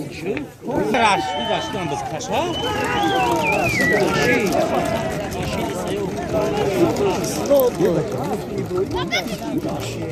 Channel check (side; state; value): both; identical; correlation 1.00